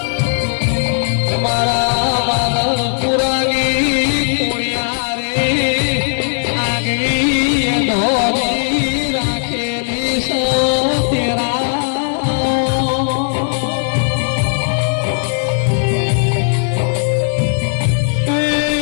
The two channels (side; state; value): right; silent; 68 dB below the other